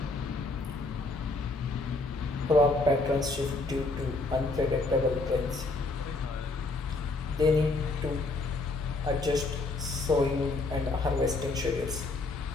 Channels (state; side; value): quieter; right; 3.4 dB